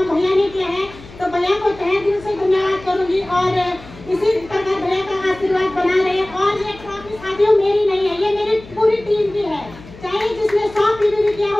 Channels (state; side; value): noise; left; hum, 19 dB below the sound